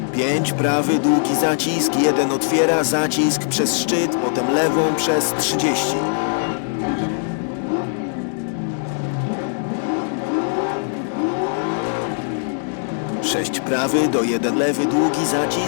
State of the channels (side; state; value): right; silent; digital silence